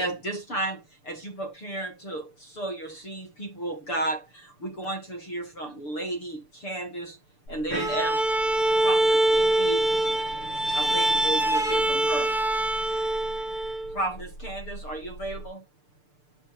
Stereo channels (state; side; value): late; right; 6.8 ms